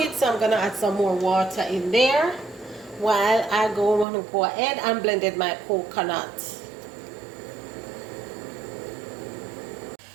so I'm gonna add some more water in there while I go ahead and blended my coconut.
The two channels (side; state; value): left; drops out; at 4.0 s